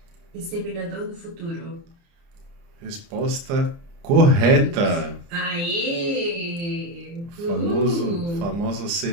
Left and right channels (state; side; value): late; left; 30 ms